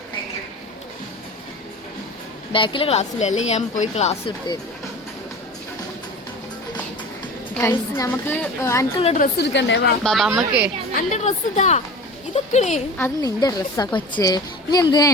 ബാക്കില് ക്ലാസ്സില്ല, അല്ലെങ്കിൽ ഞാൻ പോയി ക്ലാസ് എടുത്ത് നമുക്ക് എനിക്കുള്ള ഡ്രസ്സ് എടുക്കണ്ടേ ബാബാ അമ്മക്ക് എന്റെ ഡ്രസ്സ് ഇതാ ഇതൊക്കെ അത് നിന്റെ ഡ്രസ്സാ കൊച്ചേ. നീ എന്തിനാ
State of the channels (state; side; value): normal; both; correlation 0.36